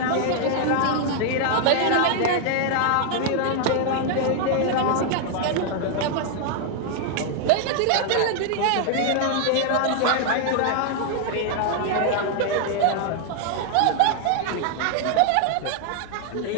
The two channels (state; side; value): different; both; correlation 0.00